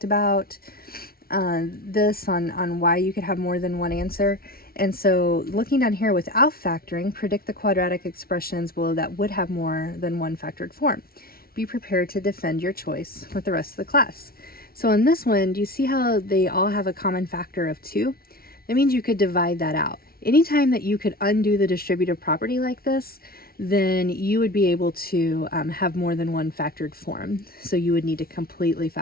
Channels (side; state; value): right; late; 0.44 ms